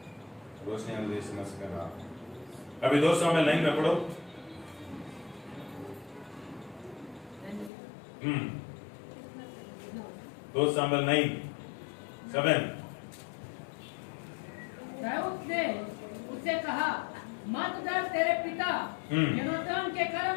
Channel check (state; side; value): drops out; right; at 7.7 s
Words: रोशनी समझ करना। अभी 2 समय लाइन में पढ़ो। 2 Samuel 9:7। दाऊद ने उससे कहा, मत डर, तेरे पिता योनातान के